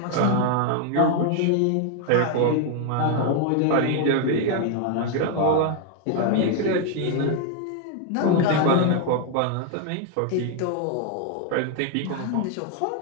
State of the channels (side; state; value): both; different; correlation 0.01